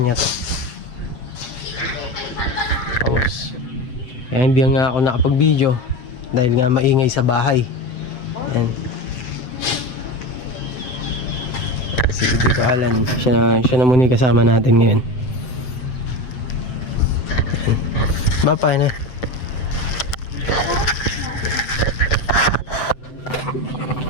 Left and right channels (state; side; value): late; right; 8.0 ms